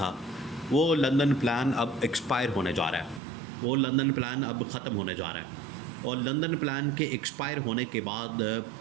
वो लंदन प्लान अब एक्सपायर होने जा रहा है। वो लंदन प्लान अब ख़त्म होने जा रहा है और लंदन प्लान के एक्सपायर होने के बाद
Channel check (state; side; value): drops out; left; at 3.2 s